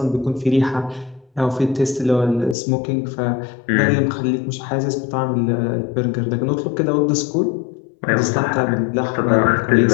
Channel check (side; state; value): right; drops out; at 2.6 s